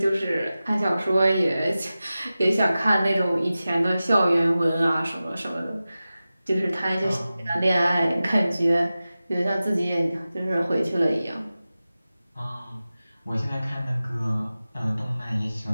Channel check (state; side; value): inverted; both; correlation -0.95